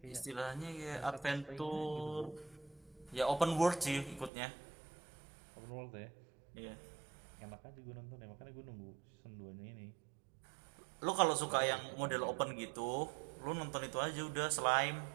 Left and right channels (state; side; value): drops out; left; at 4.3 s